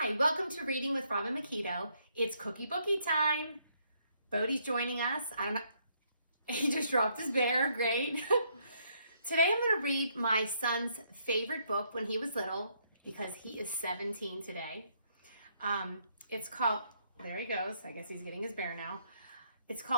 Hi, welcome to Reading with Robin McKeto. It's Cookie Bookie time. Bodie's joining us. I don't know, he just dropped his bear, great. Today I'm going to read my son's favorite book when he was little because he is 17 today. It's called, there he goes, I guess he's getting his bear now. It's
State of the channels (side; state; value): both; inverted; correlation -0.72